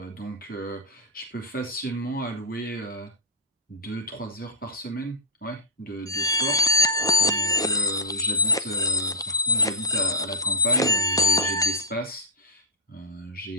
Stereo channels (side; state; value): both; normal; correlation -0.01